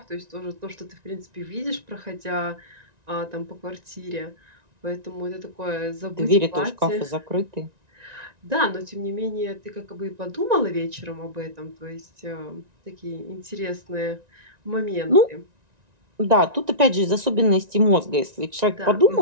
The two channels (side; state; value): left; late; 1.9 ms